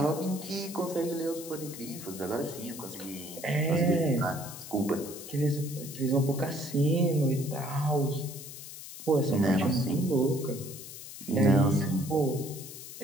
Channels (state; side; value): noise; left; hiss, 12 dB below the sound